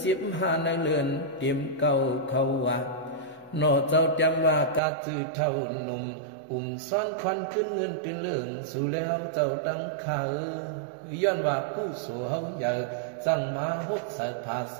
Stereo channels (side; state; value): left; drops out; at 4.8 s